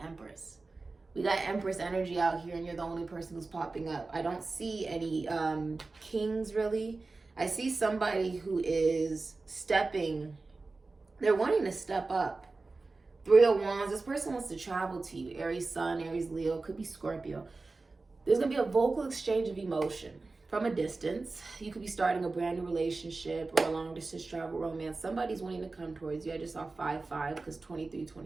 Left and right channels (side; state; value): left; quieter; 3.7 dB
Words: We got Empress energy out here and you're the only person who's popping up. I don't see any kings really. I see somebody who is stepping. They're wanting to step up. 3 of Wands. This person wants to travel to you. Aries Sun, Aries Leo, could be Scorpio. There's going to be a vocal exchange of emotion from a distance. You could be starting a brand new relationship or a long distance travel romance. Somebody's wanting to come towards you. I just saw 5-5 because